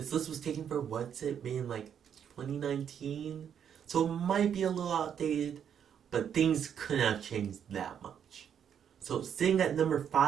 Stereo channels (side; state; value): left; quieter; 8.5 dB